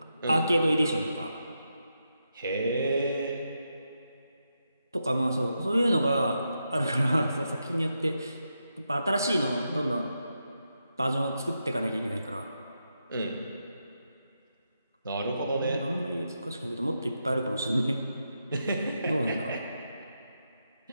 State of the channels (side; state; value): both; inverted; correlation -0.85